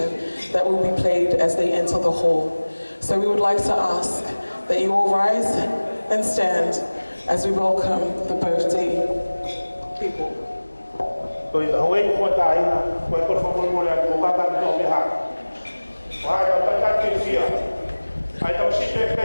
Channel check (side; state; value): both; inverted; correlation -1.00